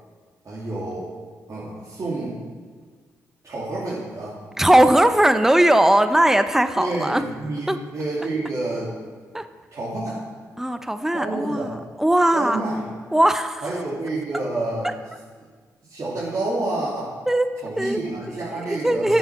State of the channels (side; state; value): both; normal; correlation 0.93